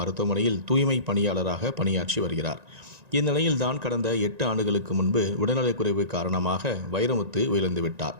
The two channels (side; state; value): left; late; 1.9 ms